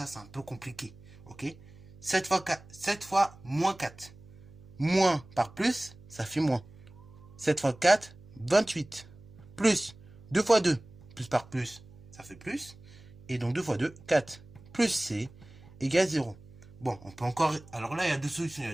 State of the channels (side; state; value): right; noise; hum, 21 dB below the sound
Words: c'est un peu compliqué. Ok, 7 fois 4, 7 fois moins 4. Moins par plus, ça fait moins. 7 fois 4, 28. Plus 2 fois 2, plus par plus, ça fait plus. Et donc 2 fois 2, 4. Plus C égale 0. Bon, on peut encore... Alors là, il y a deux solutions, il y